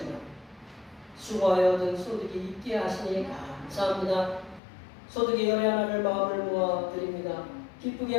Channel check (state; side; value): drops out; right; at 4.6 s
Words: 수고하여 얻은 소득이 있게 하시니 감사합니다. 소득의 열의 하나를 마음을 모아 드립니다.